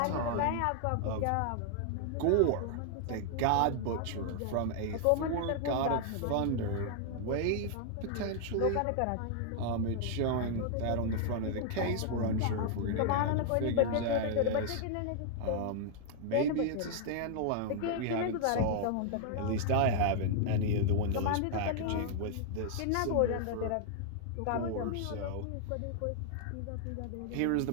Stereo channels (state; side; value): different; both; correlation -0.01